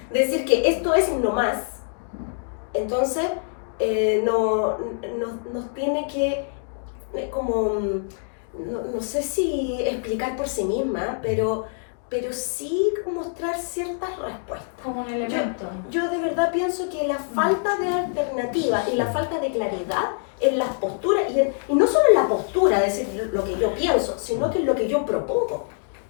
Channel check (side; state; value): right; silent; 62 dB below the other